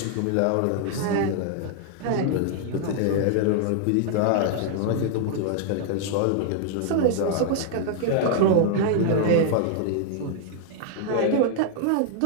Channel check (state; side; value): different; both; correlation -0.01